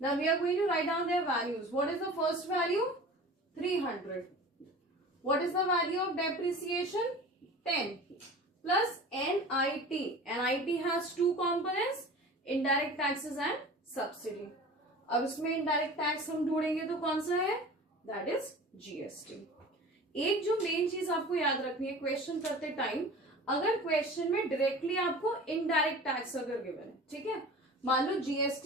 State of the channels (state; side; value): normal; both; correlation 0.39